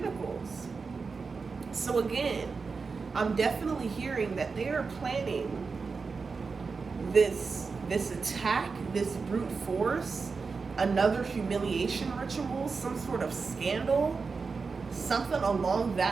So again, I'm definitely hearing that they are planning this attack, this brute force, another humiliation ritual, some sort of scandal, something along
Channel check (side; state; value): left; quieter; 4.7 dB